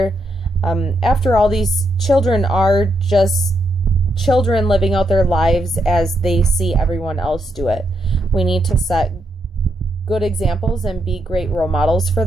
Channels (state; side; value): normal; both; correlation 0.80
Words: After all, these children are just children living out their lives as they see everyone else do it. We need to set good examples and be great role models for